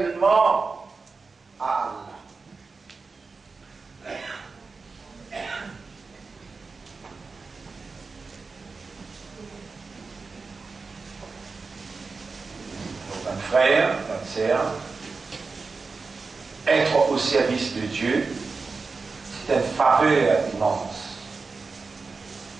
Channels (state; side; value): quieter; left; 4.3 dB